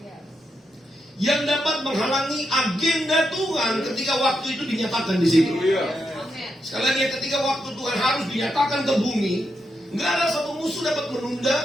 yang dapat menghalangi agenda Tuhan ketika waktu itu dinyatakan di situ. Sekali lagi, ketika waktu Tuhan harus dinyatakan ke bumi, nggak ada satu musuh dapat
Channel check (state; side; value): normal; both; correlation 0.84